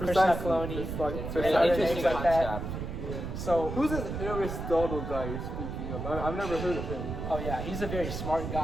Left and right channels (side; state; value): right; noise; rumble, 5 dB below the sound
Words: Precisely. Kaloni, It's like- It's and an other interesting names like that. concept. So, Who's this Aristotle guy you're speaking of? I've never heard of him. oh yeah, he's a very smart